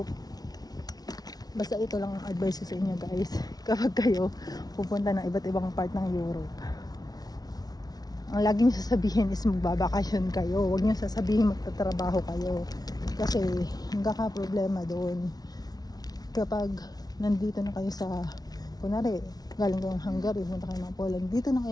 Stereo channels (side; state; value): right; late; 0.19 ms